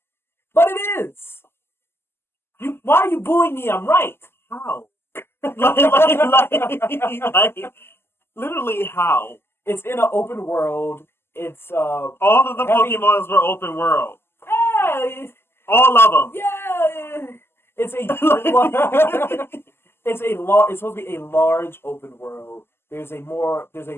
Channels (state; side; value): late; right; 0.12 ms